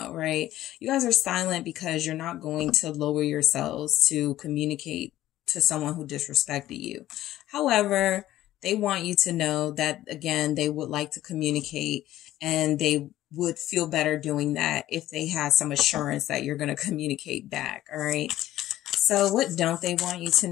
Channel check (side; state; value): right; quieter; 14.2 dB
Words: right? You guys are silent because you're not going to lower yourselves to communicate to someone who disrespected you. However, they want you to know that, again, they would like to communicate, and they would feel better doing that if they had some assurance that you're going to communicate back. All right. So what don't they want you to